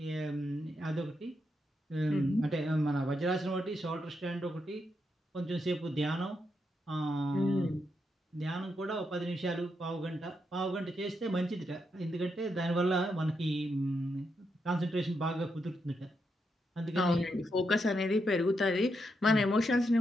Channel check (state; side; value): normal; both; correlation 0.82